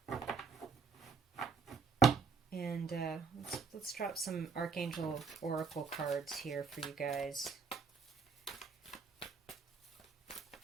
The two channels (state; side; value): quieter; left; 5.5 dB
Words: And let's drop some Archangel Oracle cards here for you guys.